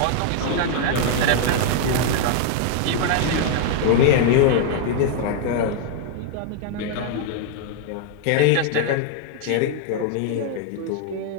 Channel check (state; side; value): different; both; correlation 0.00